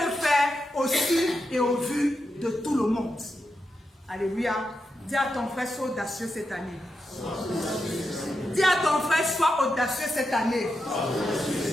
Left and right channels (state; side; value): normal; both; correlation 0.87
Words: faire au su et au vu de tout le monde. Alléluia. Dis à ton frère, sois audacieux cette année. Dis à ton frère, sois audacieux cette année.